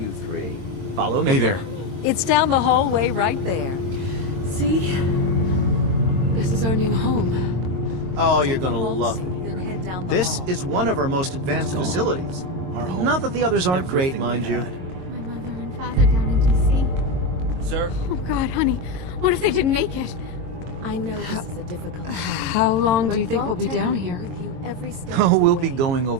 three. Follow me. Hey there. It's down the hallway right there. See? This is our new home. Oh, you're Take the gonna vault love suit, it. then head down the This hall. is one of our most advanced facilities. Not that the others aren't great, mind you. My mother and father down in D.C. Sir? Oh, God, honey. What if they didn't make it? I know this is a difficult time. How long do you but think we'll be Vault Tech down will be here? with you every step Oh, of the we'll be way. going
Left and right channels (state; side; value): late; left; 22 ms